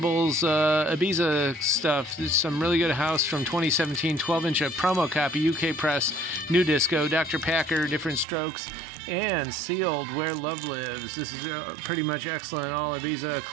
Ibiza stuff. There's some really good house from 2017, 12-inch promo copy, UK press, new disco, Dr. Packer, Different Strokes, and Sealed, Where Love Lives. This is pretty much excellent. All Ibiza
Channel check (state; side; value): drops out; left; at 8.2 s